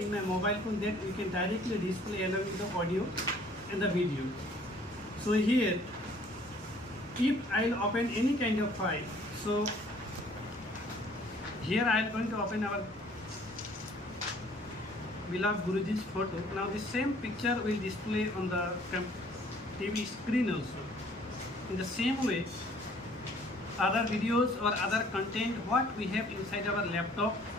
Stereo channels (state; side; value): normal; both; correlation 0.57